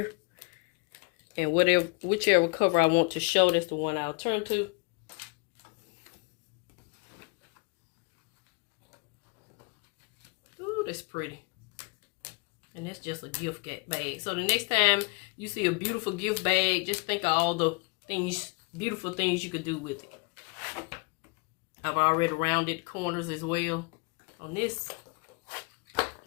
and whichever cover I want to show, that's the one I'll turn to. Ooh, that's pretty. And that's just a gift bag. So the next time you see a beautiful gift bag, just think of all the things, beautiful things you could do with it. I've already rounded the corners as well on this.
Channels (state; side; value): quieter; right; 30.8 dB